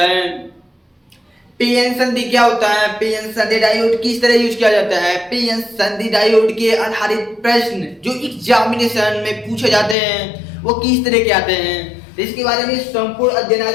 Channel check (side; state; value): right; drops out; at 10.0 s